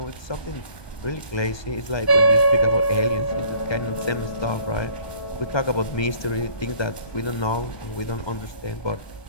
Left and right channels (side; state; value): right; late; 1.2 ms